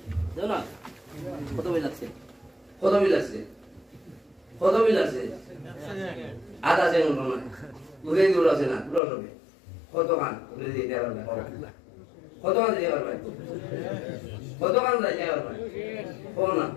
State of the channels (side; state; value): right; drops out; at 9.0 s